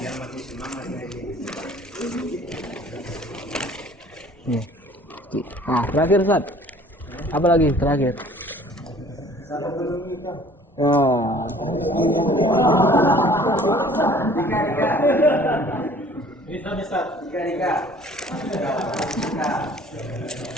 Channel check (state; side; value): normal; both; correlation 0.52